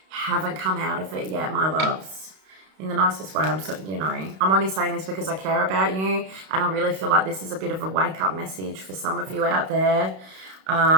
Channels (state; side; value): late; left; 32 ms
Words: come out of it yet, my loves. In the nicest way. I'm only saying this because I care about you, and I really feel like this is a bit of a wake-up message for some of you out there.